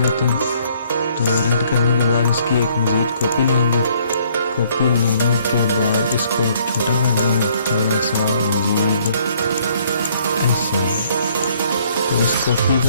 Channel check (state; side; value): inverted; both; correlation -0.63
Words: हैं। तो रेड करने के बाद इसकी एक मज़ीद कॉपी लेंगे। कॉपी लेने के बाद इसको छोटा कर देंगे थोड़ा सा मज़ीद ऐसे। तो इस कॉपी